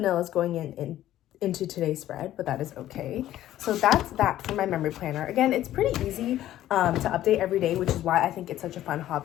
going into today's spread, but that is okay. So that's that for my memory planner. Again, it's pretty easy to update every day, which is why I think it's such a fun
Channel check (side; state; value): right; quieter; 13.3 dB